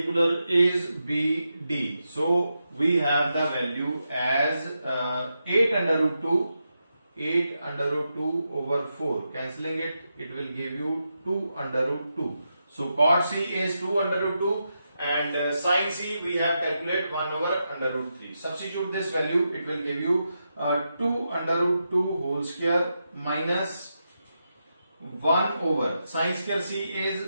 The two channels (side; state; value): both; inverted; correlation -0.86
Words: is BD. So we have the value as 8 under root 2 8 under root 2 over 4. Cancelling it, it will give you 2 under root 2. So cot C is 2 under root 2 and sin C we have calculated 1 over under root 3. Substitute this value, it will give you 2 under root 2 whole square minus 1 over sin square C